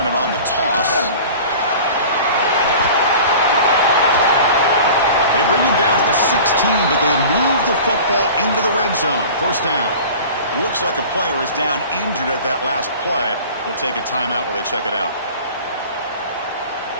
it on the toss. They bring him down to the 16, but they move the football into the red zone. First down. Looks like a player is down injured at that last play. We'll take a timeout while they check it out.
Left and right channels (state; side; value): inverted; both; correlation -0.40